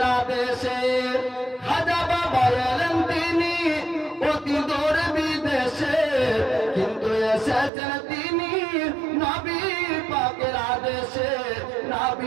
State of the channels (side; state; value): left; drops out; at 7.7 s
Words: আদেশে খাজা বাবা এলেন তিনি অতি দূরে বিদেশে কিন্তু এসেছেন তিনি নবী পাকের আদেশে